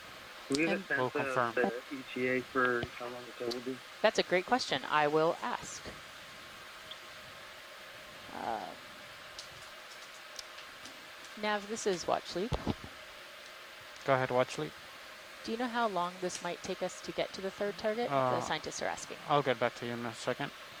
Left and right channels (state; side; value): identical; both; correlation 1.00